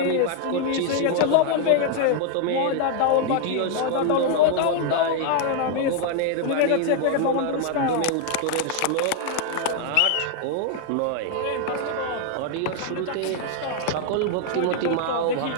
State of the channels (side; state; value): both; different; correlation 0.00